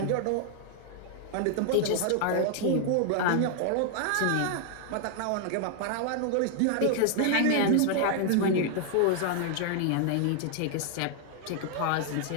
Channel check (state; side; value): different; both; correlation 0.00